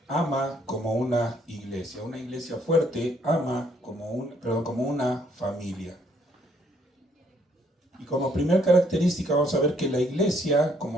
ama como una iglesia. Una iglesia fuerte ama como una familia. Y como primer característica vamos a ver que la iglesia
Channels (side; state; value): both; normal; correlation 0.67